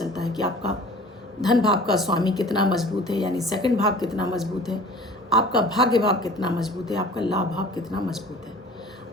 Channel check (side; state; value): both; normal; correlation 0.45